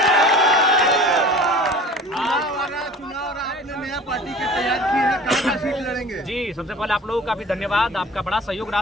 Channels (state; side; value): normal; both; correlation 0.42